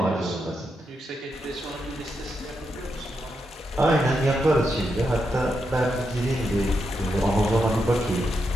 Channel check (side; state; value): both; normal; correlation 0.84